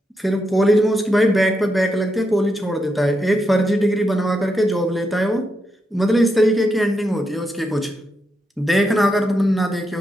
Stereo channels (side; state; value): both; normal; correlation 0.83